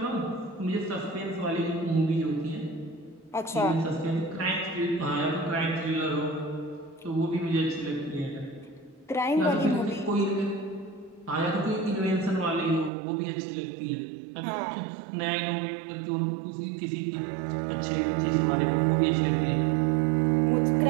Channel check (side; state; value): left; drops out; at 12.9 s